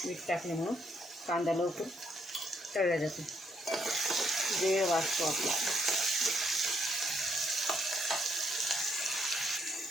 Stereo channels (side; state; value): both; normal; correlation 0.73